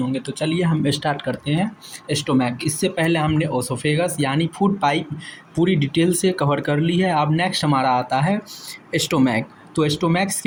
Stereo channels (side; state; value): both; identical; correlation 1.00